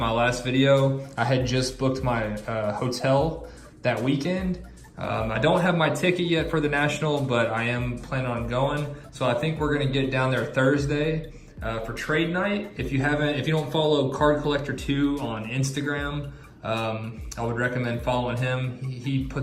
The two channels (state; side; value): identical; both; correlation 1.00